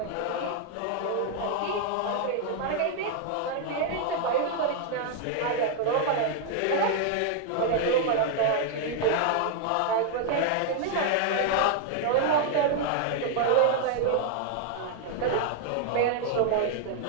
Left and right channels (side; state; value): both; different; correlation 0.00